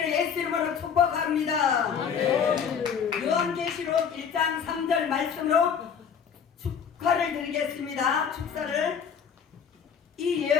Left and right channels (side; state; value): right; quieter; 7.1 dB